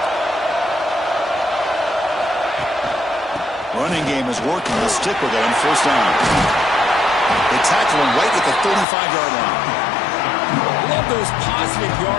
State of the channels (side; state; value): right; drops out; at 8.8 s